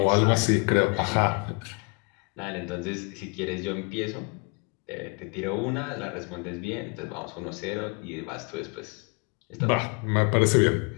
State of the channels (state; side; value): quieter; right; 32.9 dB